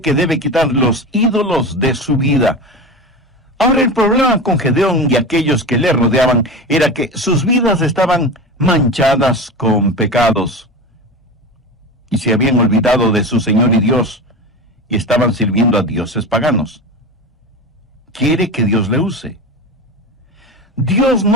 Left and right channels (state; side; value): normal; both; correlation 0.26